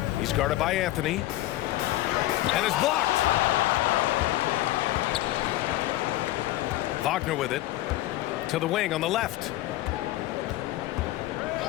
He's guarded by Anthony. And is blocked. Wagner with it. To the wing on the left.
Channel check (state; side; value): quieter; right; 16.1 dB